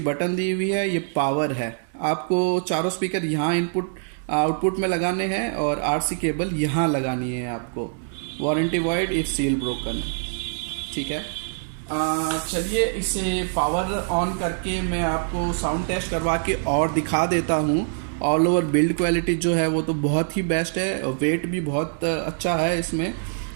बटन दी हुई है, ये पावर है। आपको चारों स्पीकर यहाँ इनपुट आउटपुट में लगाने हैं और RC केबल यहाँ लगानी है आपको। Warranty void if seal broken, ठीक है। चलिए इसे पावर ऑन करके मैं आपको साउंड टेस्ट करवा के और दिखा देता हूँ, ऑल ओवर बिल्ड क्वालिटी जो है वो तो बहुत ही बेस्ट है, वेट भी बहुत अच्छा है इसमें।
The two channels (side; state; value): left; silent; digital silence